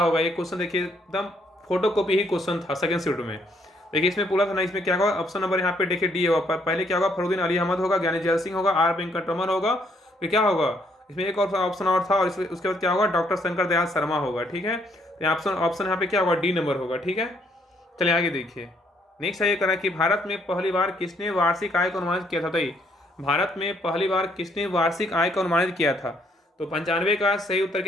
ये क्वेश्चन। देखिए एकदम फोटो कॉपी ही क्वेश्चन था सेकेंड शिफ्ट में। देखिए इसमें पूरा था ना, इसमें क्या होगा, ऑप्शन नंबर यहाँ पे देखिए डी होगा। पहले क्या होगा, फरुद्दीन अली अहमद होगा, ज्ञानी जैल सिंह होगा, आर वेंकटरमन होगा, फिर क्या होगा, इसमें एक और ऑप्शन और था, और उसके बाद क्या होगा, डॉक्टर शंकर दयाल शर्मा होगा। ठीक है। तो ऑप्शन यहाँ पे क्या होगा, डी नंबर होगा। ठीक है। चलिए आगे देखिए नेक्स्ट है ये करा कि भारत में पहली बार किसने वार्षिक आय को अनुमानित किया था। बताइए भारत में पहली बार किसने वार्षिक आय को अनुमानित किया था। तो 95 का सही उत्तर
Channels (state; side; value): normal; both; correlation 0.69